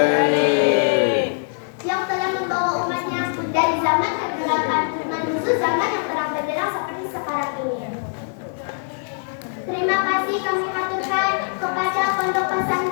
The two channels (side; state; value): right; silent; 64 dB below the other